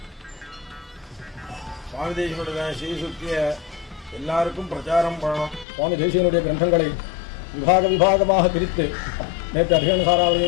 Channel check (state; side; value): drops out; right; at 5.7 s